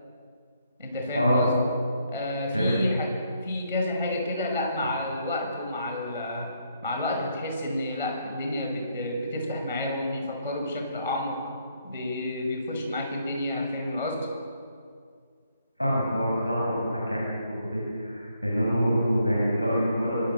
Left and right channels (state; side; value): inverted; both; correlation -0.74